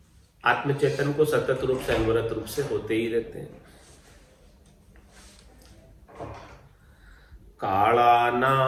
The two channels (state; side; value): identical; both; correlation 1.00